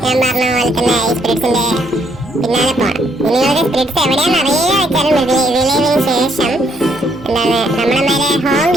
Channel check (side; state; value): both; normal; correlation 0.71